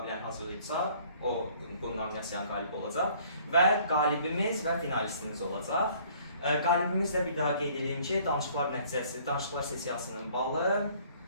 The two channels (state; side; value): inverted; both; correlation -0.57